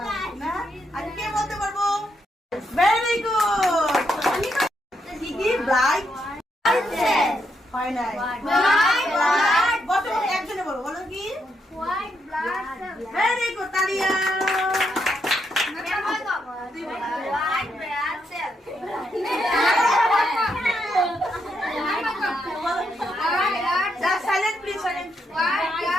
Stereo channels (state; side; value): normal; both; correlation 0.79